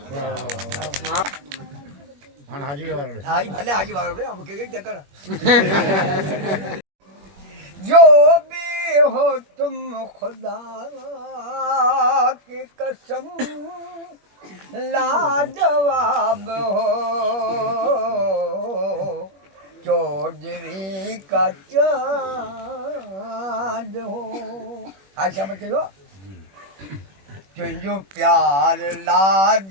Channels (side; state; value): left; late; 21 ms